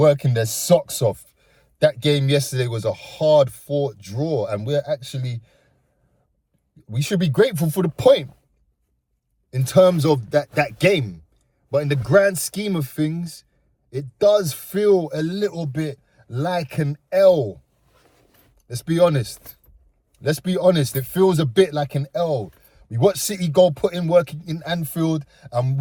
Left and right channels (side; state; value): both; identical; correlation 1.00